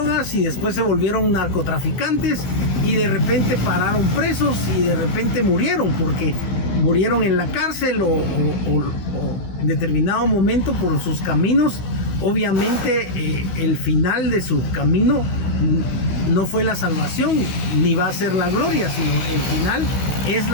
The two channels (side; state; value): right; late; 16 ms